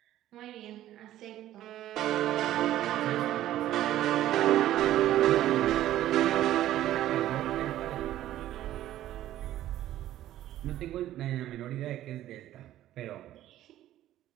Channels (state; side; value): quieter; left; 13.3 dB